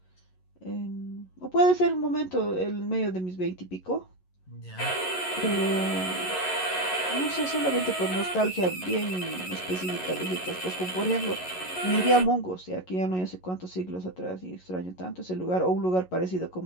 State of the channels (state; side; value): late; right; 11 ms